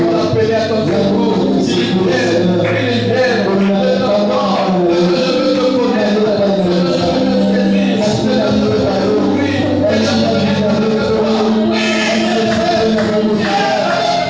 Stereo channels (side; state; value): both; identical; correlation 1.00